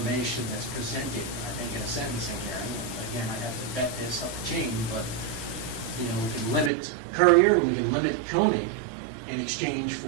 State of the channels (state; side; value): drops out; left; at 6.7 s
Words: that's presented, I think, in a sentencing hearing. Again, I'd have to vet this up the chain, but, we can limit Currier, we can limit Koenig in exchange